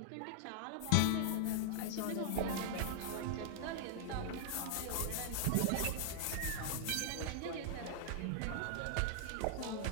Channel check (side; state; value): both; different; correlation 0.00